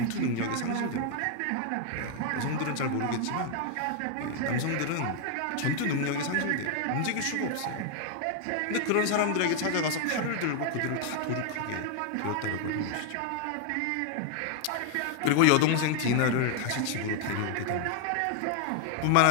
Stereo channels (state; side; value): different; both; correlation 0.00